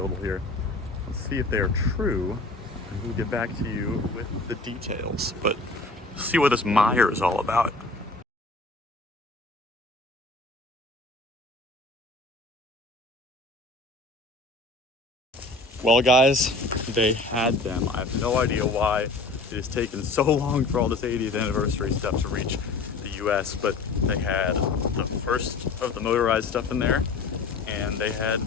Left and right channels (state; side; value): quieter; right; 3.3 dB